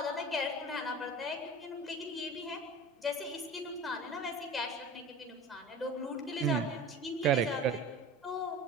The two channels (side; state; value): both; normal; correlation 0.36